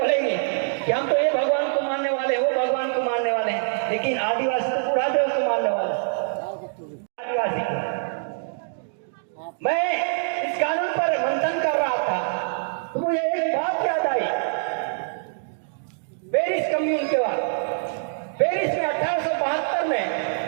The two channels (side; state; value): left; silent; digital silence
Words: कि हम तो ये भगवान को मानने वाले, वो भगवान को मानने वाले हैं, लेकिन आदिवासी तो बुढ़ा देव को मानने वाले। आदिवासी को मैं इस कानून पर मंथन कर रहा था तो मुझे एक बात याद आई। पेरिस कम्यून के बाद, पेरिस में 1872 में